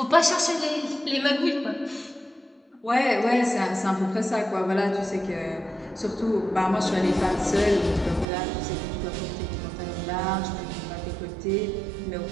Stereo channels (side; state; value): left; drops out; at 8.2 s